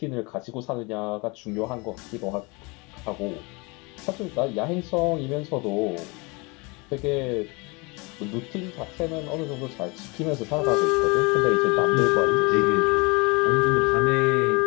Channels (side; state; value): right; quieter; 27.7 dB